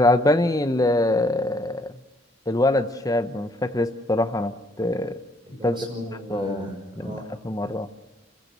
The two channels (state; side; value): normal; both; correlation 0.66